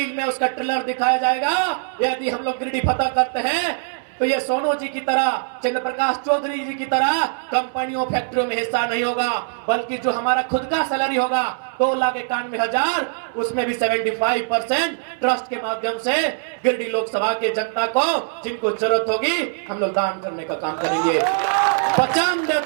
में उसका ट्रेलर दिखाया जाएगा। यदि हम लोग गिरिडीह फतह करते हैं तो ये सोनू जी की तरह, चंद्र प्रकाश चौधरी जी की तरह कंपनियों फैक्ट्रियों में हिस्सा नहीं होगा, बल्कि जो हमारा खुद का सैलरी होगा 2,91,000, उसमें भी 75% ट्रस्ट के माध्यम से गिरिडीह लोकसभा के जनता को जिनको जरूरत होगी हम लोग दान करने का काम करेंगे। वचन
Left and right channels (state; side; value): silent; left; 63 dB below the other